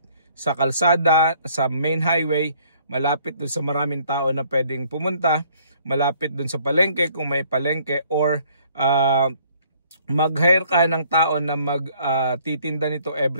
sa kalsada, sa main highway, malapit dun sa maraming tao na pwedeng pumunta, malapit dun sa palengke kung may palengke, or mag-hire ka ng tao na magtitinda nito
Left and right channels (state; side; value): inverted; both; correlation -0.61